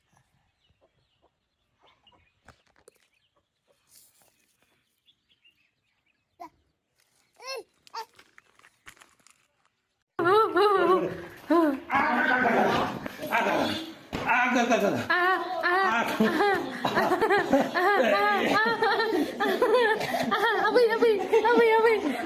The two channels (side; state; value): both; identical; correlation 1.00